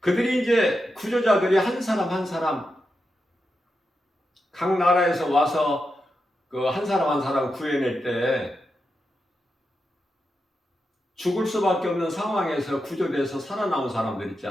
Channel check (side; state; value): both; normal; correlation 0.87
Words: 이제 구조자들이 한 사람 한 사람 각 나라에서 와서 그 한 사람 한 사람 구해낼 때 죽을 수밖에 없는 상황에서 구조돼서 살아나온 사람들 있지